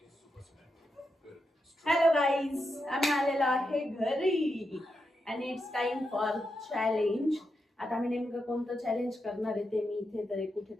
हॅलो गाईज, आम्ही आलेलो आहे घरी आणि इट्स टाइम फॉर चॅलेंज. आता आम्ही नेमकं कोणतं चॅलेंज करणार आहे ते मी इथे तरी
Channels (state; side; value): normal; both; correlation 0.86